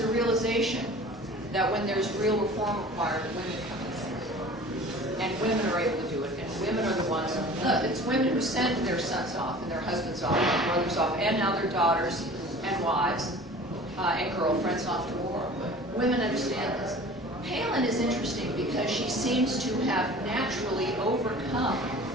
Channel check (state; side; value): normal; both; correlation 0.43